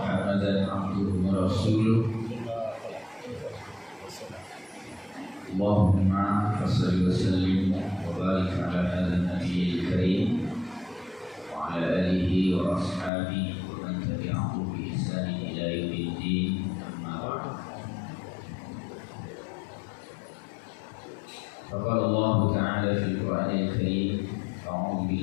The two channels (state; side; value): drops out; right; at 13.1 s